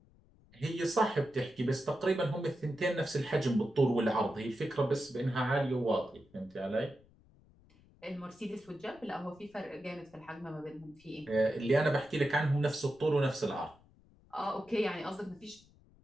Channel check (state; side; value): noise; left; rumble, 28 dB below the sound